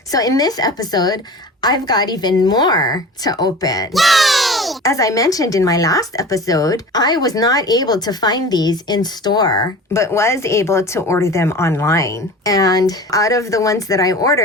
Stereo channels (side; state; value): both; normal; correlation 0.37